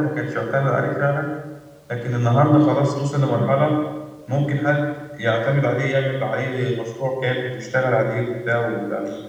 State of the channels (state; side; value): identical; both; correlation 1.00